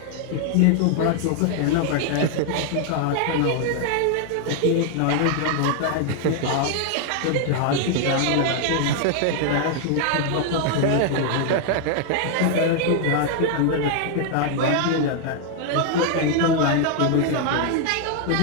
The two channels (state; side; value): different; both; correlation 0.00